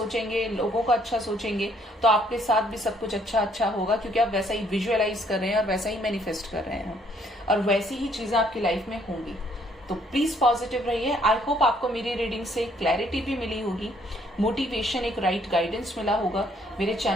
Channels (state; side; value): normal; both; correlation 0.66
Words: लोगों का अच्छा सोचेंगे, तो आपके साथ भी सब कुछ अच्छा होगा, क्योंकि आप वैसा ही विजुअलाइज कर रहे हैं और वैसा ही मैनिफेस्ट कर रहे हैं और वैसी ही चीजें आपकी लाइफ में होंगी। तो प्लीज पॉजिटिव रहिए। आई होप आपको मेरी रीडिंग से क्लैरिटी भी मिली होगी, मोटिवेशन, एक राइट गाइडेंस मिला होगा। मेरे